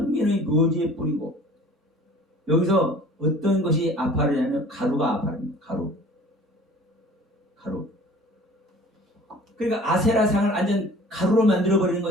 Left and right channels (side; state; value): both; normal; correlation 0.47